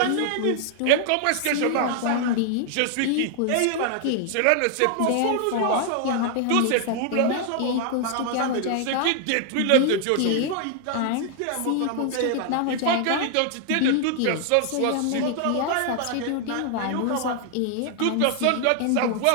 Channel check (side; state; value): both; different; correlation 0.00